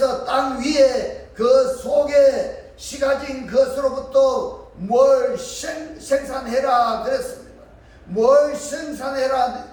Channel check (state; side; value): identical; both; correlation 1.00